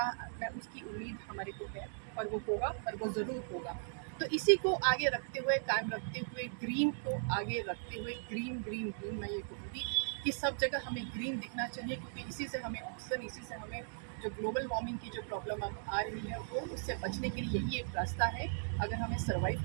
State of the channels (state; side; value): silent; left; digital silence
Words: मैं उसकी उम्मीद हमारे को है, और वो होगा, और वो ज़रूर होगा। तो इसी को आगे रखते हुए, कायम रखते हुए, ग्रीन को आगे रखते हुए, ग्रीन ग्रीन ग्रीन, मैं ये कहूँगी कि सब जगह हमें ग्रीन दिखना चाहिए, क्योंकि इसी से हमें ऑक्सीजन, इसी से हमें जो ग्लोबल वार्मिंग की जो प्रॉब्लम अब आ रही है, वो उससे बचने के लिए यही एक रास्ता है। अगर हमें